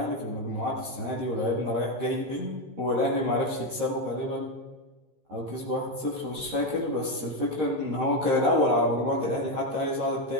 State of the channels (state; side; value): late; left; 13 ms